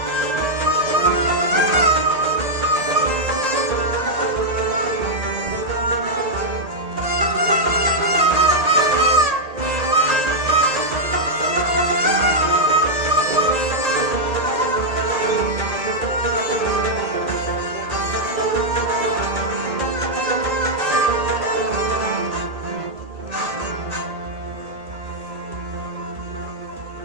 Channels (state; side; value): late; left; 1.9 ms